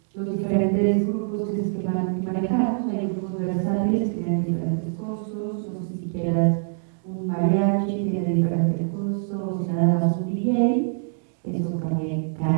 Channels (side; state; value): left; silent; digital silence